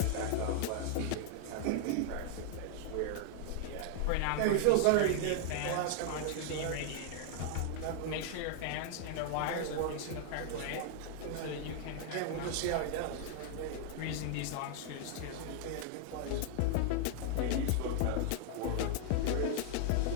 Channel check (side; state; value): both; different; correlation 0.00